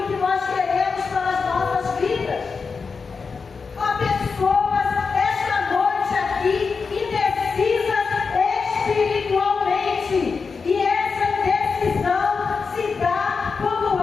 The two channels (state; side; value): quieter; right; 5.0 dB